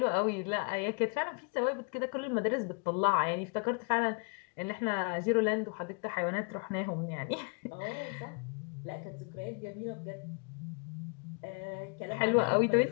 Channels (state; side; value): quieter; right; 36.6 dB